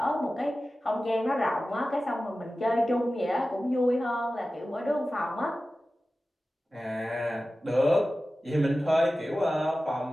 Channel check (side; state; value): both; normal; correlation 0.95